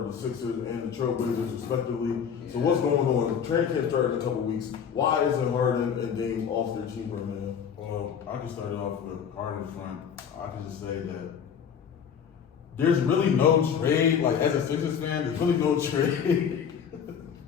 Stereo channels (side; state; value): right; quieter; 7.5 dB